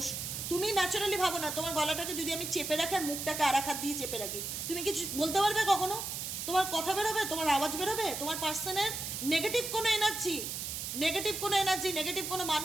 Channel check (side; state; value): right; noise; hiss, 5 dB below the sound